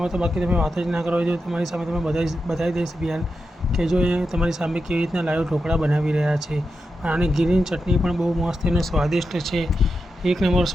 તો બાકી તમે વાત જ ના કરો. જો તમારી સામે તમે બતાવી દઈશ બિહાર કે જો એ તમારી સામે કેવી રીતના લાઈવ ઢોકળા બનાવી રહ્યા છે. આની ગ્રીન ચટણી પણ બહુ મસ્ત અને સ્વાદિષ્ટ છે. એક નંબર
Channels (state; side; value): normal; both; correlation 0.88